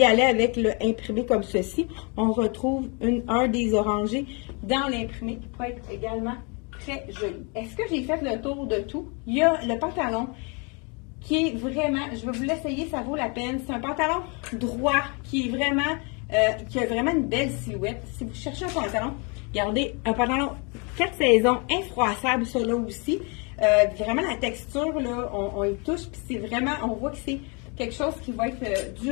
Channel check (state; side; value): quieter; right; 32.9 dB